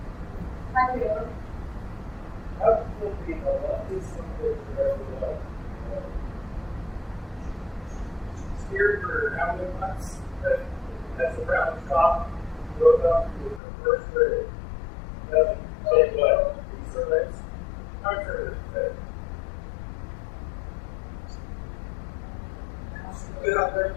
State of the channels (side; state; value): right; drops out; at 13.6 s